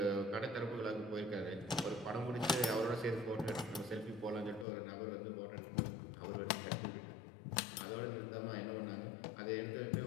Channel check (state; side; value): drops out; right; at 4.7 s